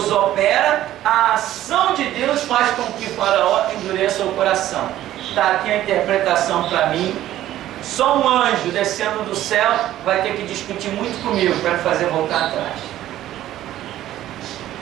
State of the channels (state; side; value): quieter; left; 13.4 dB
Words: opera, a ação de Deus faz com que Faraó endureça o coração. Está aqui a interpretação para mim. Só um anjo descendo do céu vai ter que discutir muito comigo para me fazer voltar atrás.